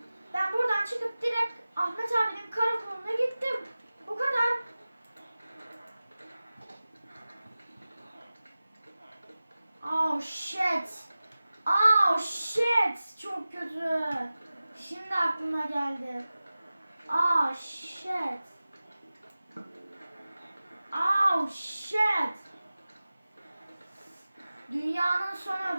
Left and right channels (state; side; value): inverted; both; correlation -0.96